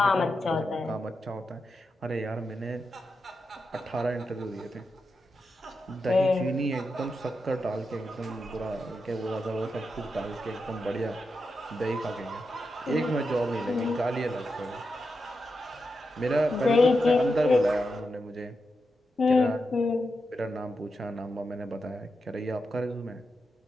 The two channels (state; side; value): normal; both; correlation 0.88